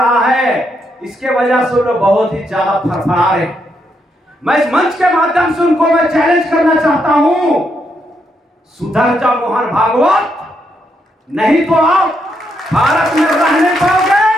है। इसके वजह से लोग बहुत ही ज्यादा फरफरा रहे। मैं इस मंच के माध्यम से उनको मैं चैलेंज करना चाहता हूं, सुधर जा मोहन भागवत, नहीं तो आप भारत में रह नहीं पाओगे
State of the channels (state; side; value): normal; both; correlation 0.79